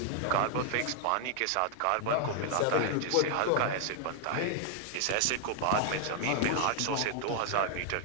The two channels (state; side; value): different; both; correlation 0.00